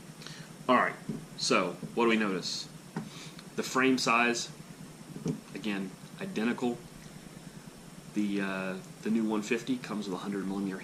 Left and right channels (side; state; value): both; identical; correlation 1.00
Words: All right. So what do we notice? The frame size, again, identical. The new 150 comes with a 100mm